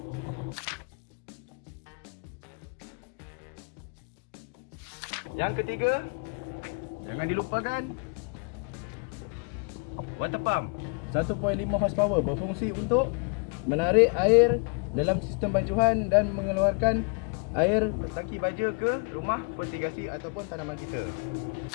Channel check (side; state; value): right; quieter; 38.2 dB